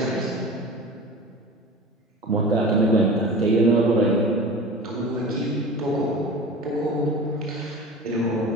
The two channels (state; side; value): normal; both; correlation 0.36